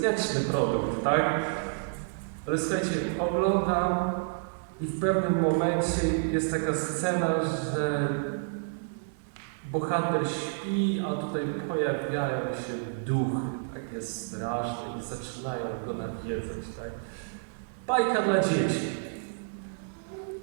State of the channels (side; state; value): left; silent; 58 dB below the other